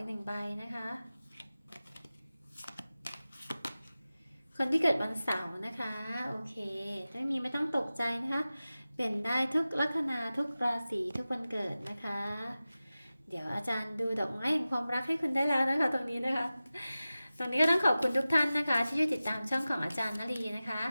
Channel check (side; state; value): both; inverted; correlation -0.96